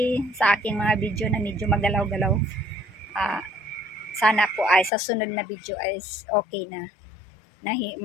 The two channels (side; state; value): right; drops out; at 4.9 s